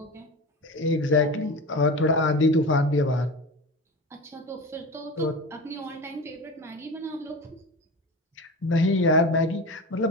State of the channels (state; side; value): normal; both; correlation 0.29